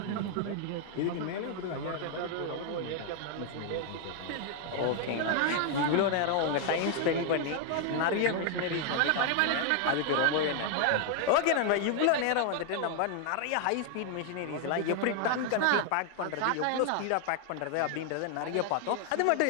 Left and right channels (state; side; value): different; both; correlation 0.00